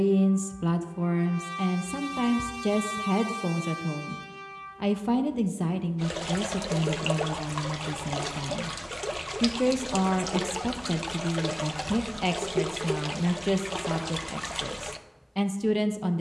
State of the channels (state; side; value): identical; both; correlation 1.00